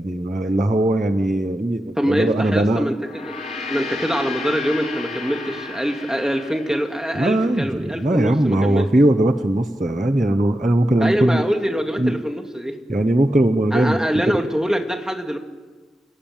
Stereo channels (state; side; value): normal; both; correlation 0.89